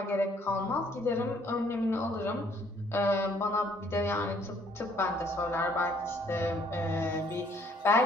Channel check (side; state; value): both; normal; correlation 0.63